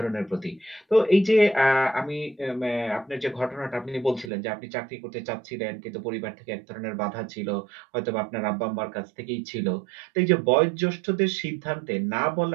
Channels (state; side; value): drops out; left; at 4.3 s